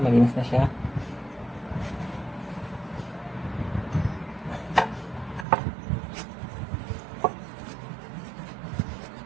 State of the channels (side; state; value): left; drops out; at 5.5 s